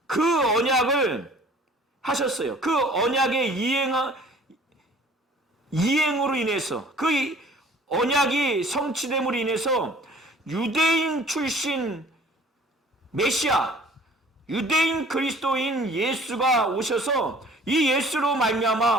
그 언약을 하셨어요. 그 언약의 이행으로 인해서 그 언약이 성취됨으로 인해서 유대인 출신 메시아, 유대인 그리스도인 예수가 오셔서 이 예수로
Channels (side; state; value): both; normal; correlation 0.51